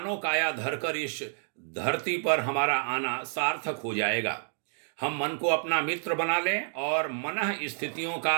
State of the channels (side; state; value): left; silent; digital silence